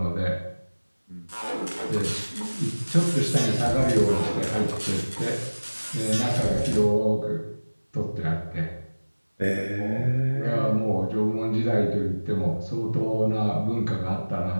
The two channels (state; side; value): inverted; both; correlation -1.00